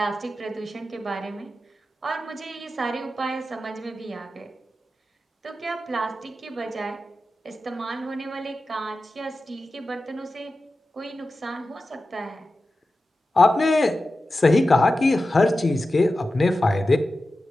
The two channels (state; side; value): normal; both; correlation 0.93